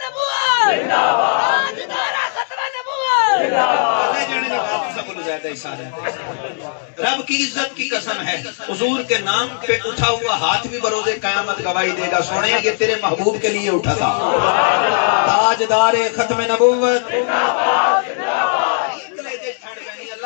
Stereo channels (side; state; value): right; silent; 67 dB below the other